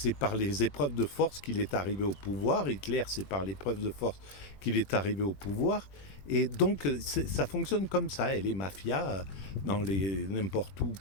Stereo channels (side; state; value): right; late; 21 ms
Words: par les épreuves de force qu'il est arrivé au pouvoir. Hitler, c'est par l'épreuve de force qu'il est arrivé au pouvoir. Et donc, ça fonctionne comme ça. Et les mafias, n'importe où